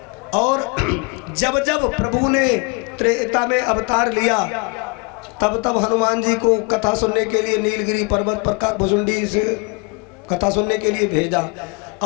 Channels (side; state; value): right; quieter; 32.7 dB